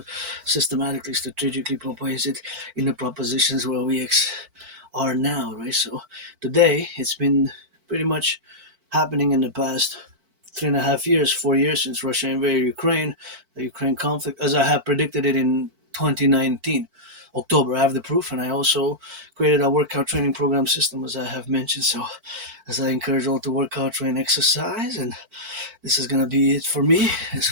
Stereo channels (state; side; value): late; left; 4.5 ms